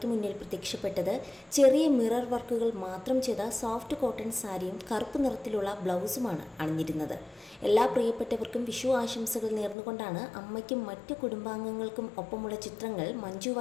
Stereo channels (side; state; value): right; drops out; at 9.8 s